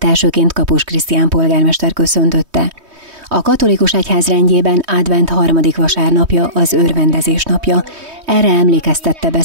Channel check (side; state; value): left; late; 3.2 ms